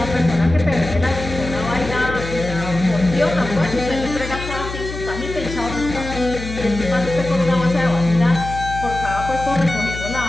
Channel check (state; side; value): noise; left; hum, 9 dB below the sound